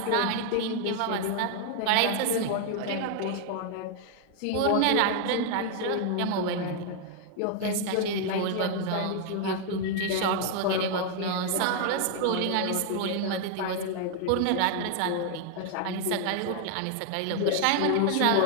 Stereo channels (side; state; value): both; different; correlation 0.00